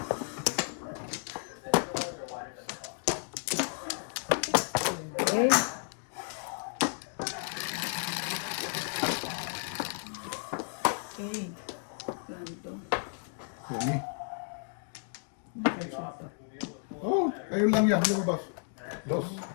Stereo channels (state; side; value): silent; right; 56 dB below the other